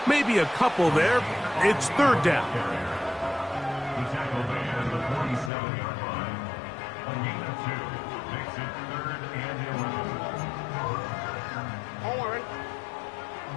Maybe a couple there. It's third down. The tackle made at the 47-yard line. A gain of 2 makes it 3rd and 11. On one, ready?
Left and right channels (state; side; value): drops out; right; at 5.5 s